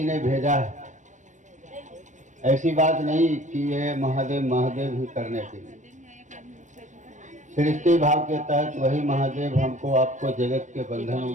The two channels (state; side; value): late; left; 0.35 ms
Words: ने भेजा है, ऐसी बात नहीं कि ये महादेव महादेव ही करने के लिए। सृष्टि भाव के तहत वही महादेव हमको आपको जगत के बंधनों